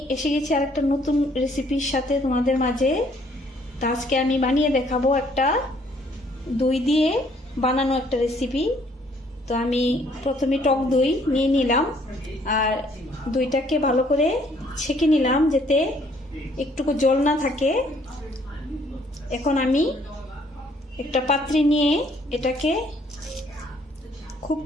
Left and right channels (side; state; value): both; normal; correlation 0.63